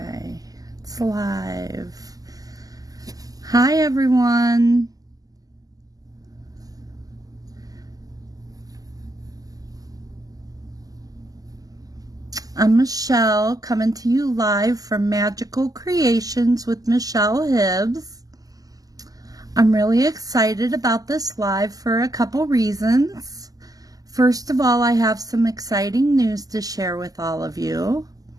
it's live. Hi, everyone. I'm Michelle, coming to you live from Magical Creations with Michelle Hibbs. I'm really excited about this live for a couple reasons. First of all, I have some exciting news to share with all of you.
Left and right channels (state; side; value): late; left; 0.17 ms